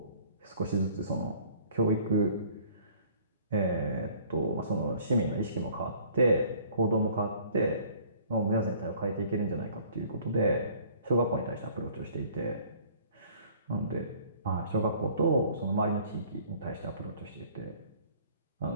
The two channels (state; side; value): inverted; both; correlation -0.54